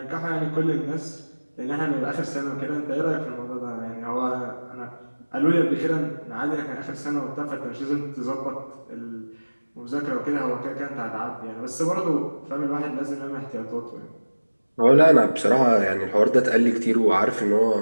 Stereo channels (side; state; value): both; inverted; correlation -1.00